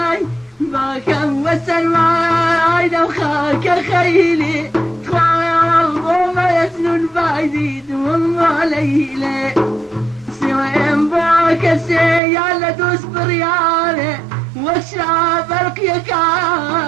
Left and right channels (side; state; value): left; drops out; at 12.2 s